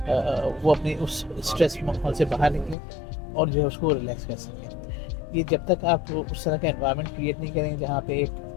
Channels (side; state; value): right; drops out; at 2.8 s